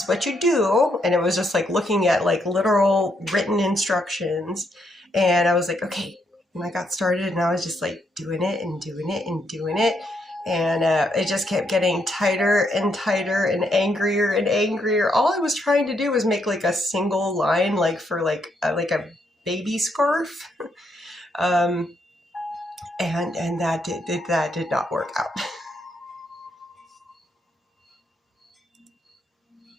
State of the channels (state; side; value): normal; both; correlation 0.77